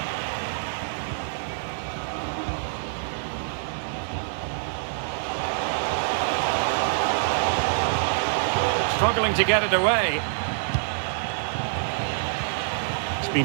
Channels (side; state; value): left; silent; 61 dB below the other